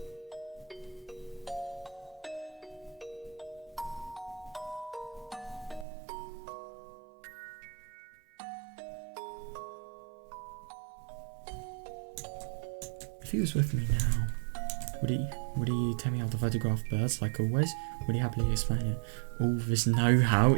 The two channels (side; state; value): left; drops out; at 5.9 s